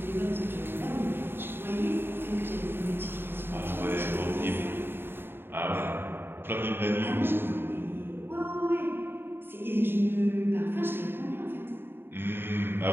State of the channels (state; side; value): late; left; 0.11 ms